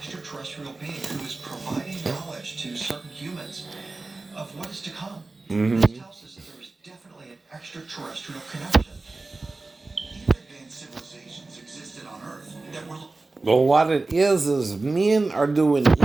being who is providing knowledge to certain humans of what is to come. This tells us that there is definitely an extraterrestrial connection. Even advanced civilizations existed on Earth that were. Well, what it is men are doing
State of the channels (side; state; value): left; quieter; 3.4 dB